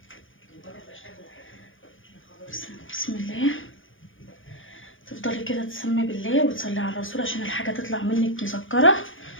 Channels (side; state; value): right; late; 0.58 ms